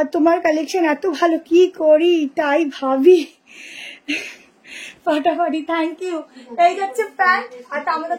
তোমার কালেকশন এত ভালো, কি করি তাই ভাবি। ফাটাফাটি, থ্যাংক ইউ। এই যাচ্ছে প্যান্ট, আর আমাদের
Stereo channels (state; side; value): identical; both; correlation 1.00